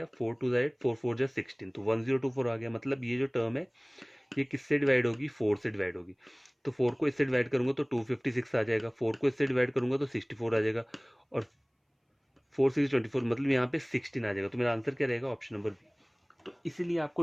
4 2 ज़ा 8, 4 4 ज़ा 16, तो 1024 आ गया, मतलब ये जो टर्म है ये किससे डिवाइड होगी, 4 से डिवाइड होगी। तो 4 को इससे डिवाइड करूंगा तो 256 आ जाएगा, 4 को इससे डिवाइड करूंगा तो 64 आ जाएगा, और 4 6 24 मतलब यहाँ पे 16 आ जाएगा, तो मेरा आंसर क्या रहेगा, ऑप्शन नंबर बी। तो इसीलिए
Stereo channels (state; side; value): identical; both; correlation 1.00